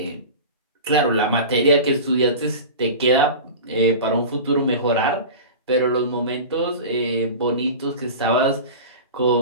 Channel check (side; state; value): both; inverted; correlation -0.32